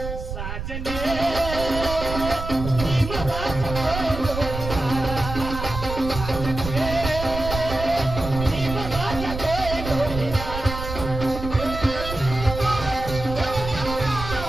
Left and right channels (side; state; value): right; noise; rumble, 7 dB below the sound